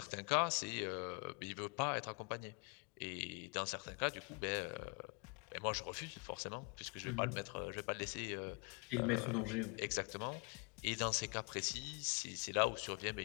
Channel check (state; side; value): quieter; right; 33.4 dB